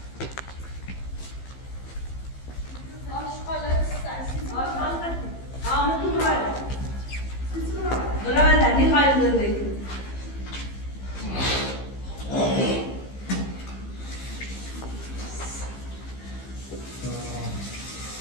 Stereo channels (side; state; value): right; late; 15 ms